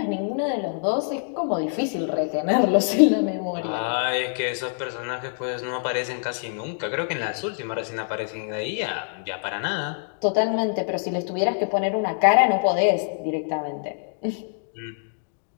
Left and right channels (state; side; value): silent; right; digital silence